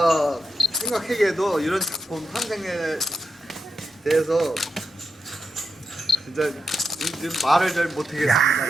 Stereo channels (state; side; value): normal; both; correlation 0.87